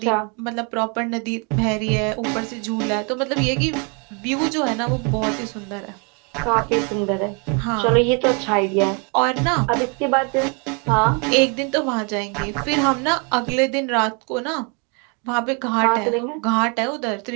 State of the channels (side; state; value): left; quieter; 34.5 dB